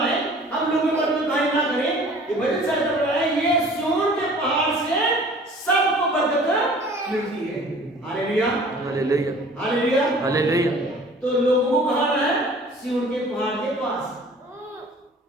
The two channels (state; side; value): normal; both; correlation 0.48